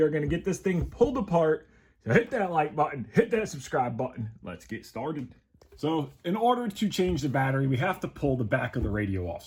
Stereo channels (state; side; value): identical; both; correlation 1.00